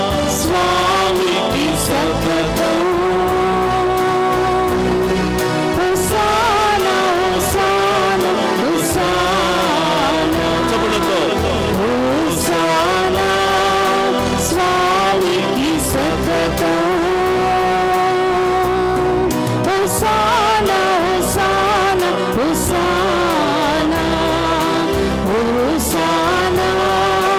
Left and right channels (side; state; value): both; identical; correlation 1.00